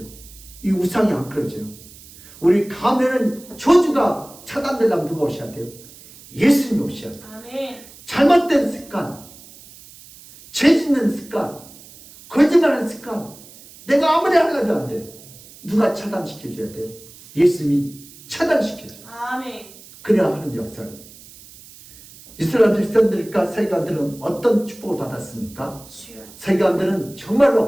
이 우상이 안 끊어져요. 우리 가면은 저주가 차단되려면 누가 오셔야 돼요? 예수님이 오셔야 돼요. 아멘. 잘못된 습관, 죄 짓는 습관, 거짓말하는 습관, 내가 아무리 하려도 안 돼요. 누가 차단시켜줘야 돼요? 예수님이 차단시켜줘요. 아멘. 그래야 하는 역사를. 이스라엘 백성들과 세관들은 어떤 축복을 받았습니까? 주여. 세관들은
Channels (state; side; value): noise; right; hiss, 21 dB below the sound